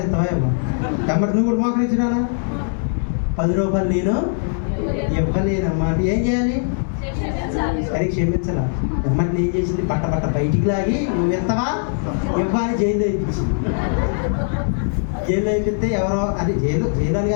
ఎత్తవా ఇవ్వ ఎమ్మటి నువ్వు కూడా మోకరించినా 10 రూపాయలు నేను ఇవ్వలేనమ్మా అంటే ఏం చేయాలి? సరే క్షమించాలా. ఎమ్మటి ఏం చేసింది? బట్ట బయటికి లాగి నువ్వు ఎత్తవా ఇవ్వాలి జైల్లో ఇప్పించింది. జైల్లో అయిపోతే ఎవరో అది జైలు అని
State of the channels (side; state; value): right; silent; digital silence